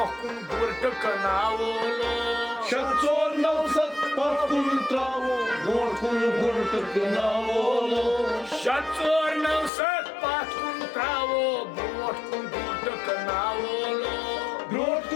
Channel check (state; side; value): drops out; right; at 9.7 s